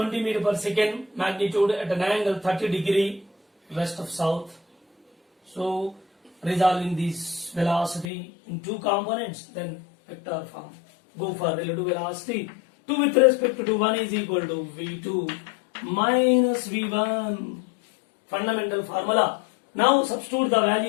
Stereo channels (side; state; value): right; drops out; at 8.1 s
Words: meter per second, magnitude at an angle 30 degree west of south. So resolving this velocity in two components, then vector form. Go for relative velocity. 2 with respect to 1 is equal to v2 minus v1. Fundamental formula. Now substitute the